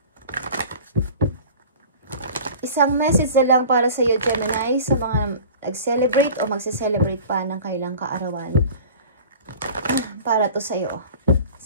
Isang message na lang para sa iyo, Gemini, sa mga nag-celebrate o magse-celebrate pa ng kailang kaarawan. Para to sa iyo.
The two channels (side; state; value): both; inverted; correlation -0.41